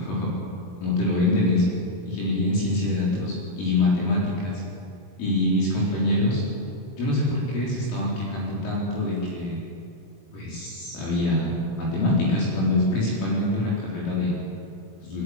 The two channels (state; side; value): late; right; 17 ms